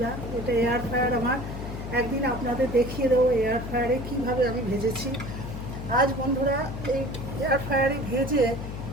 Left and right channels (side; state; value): left; noise; hum, 7 dB below the sound